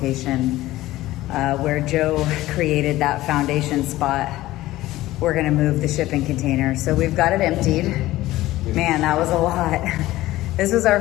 where Joe created that foundation spot. We're gonna move the shipping container. So we've got it emptied. Man, that was a lot. This was our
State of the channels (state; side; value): quieter; right; 16.5 dB